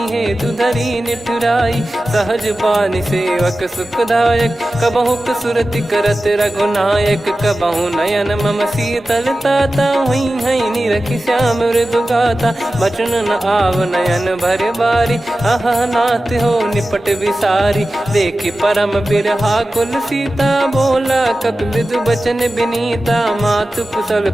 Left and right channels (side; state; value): both; normal; correlation 0.95